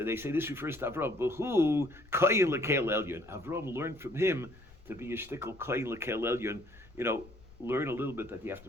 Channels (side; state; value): left; noise; rumble, 23 dB below the sound